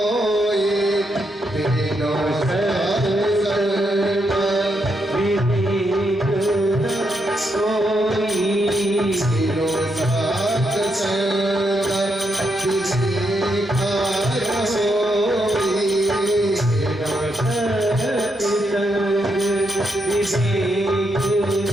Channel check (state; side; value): normal; both; correlation 0.80